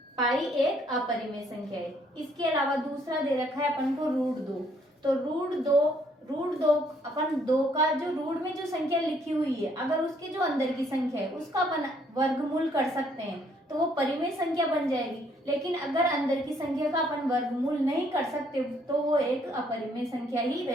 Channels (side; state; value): both; normal; correlation 0.66